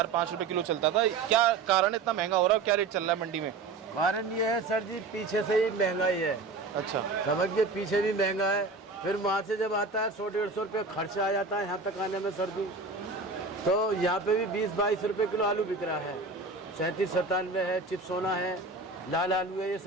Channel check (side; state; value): left; quieter; 4.0 dB